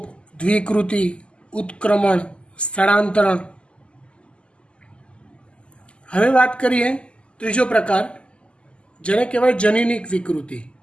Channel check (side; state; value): right; late; 0.052 ms